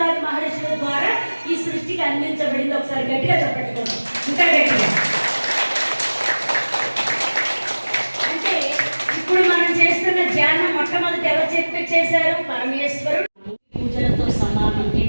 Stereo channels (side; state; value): both; inverted; correlation -1.00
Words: మహర్షుల ద్వారా ఈ సృష్టికి అందించబడింది. ఒకసారి గట్టిగా చెప్పట్టుకోండి, ఇంకా గట్టిగా. అంటే ఇప్పుడు మనం చేస్తున్న ధ్యానం మొట్టమొదటి ఎవరు చేశారు? పరమేశ్వరుడు. పూజలతో సమానం.